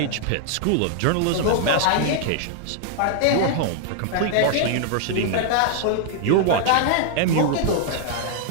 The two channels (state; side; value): different; both; correlation -0.01